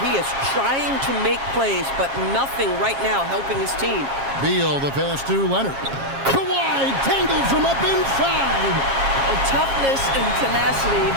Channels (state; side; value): late; left; 7.4 ms